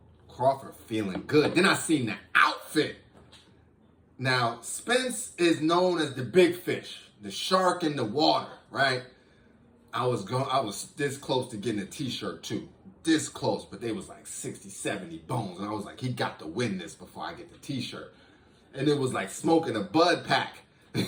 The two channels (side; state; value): both; identical; correlation 1.00